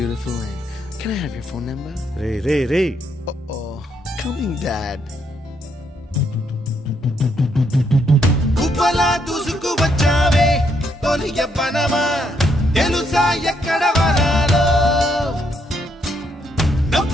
name. Can I have your phone number? Ray Oh, coming, Dad. కుప్పలా దూసుకు వచ్చావే తొలి యవ్వనమా తెలుసా ఎక్కడ వనాలో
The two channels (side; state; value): both; normal; correlation 0.75